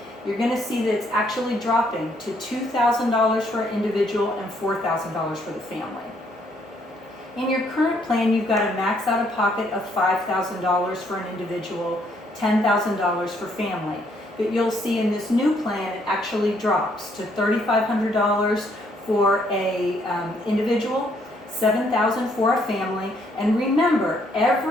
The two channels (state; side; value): normal; both; correlation 0.69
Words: You're going to see that it's actually dropping to $2,000 for an individual and $4,000 for the family. In your current plan, you've got a max out of pocket of $5,000 for an individual, $10,000 for family. But you'll see in this new plan, it actually drops to $3,500 for a individual, $7,000 for a family. And remember,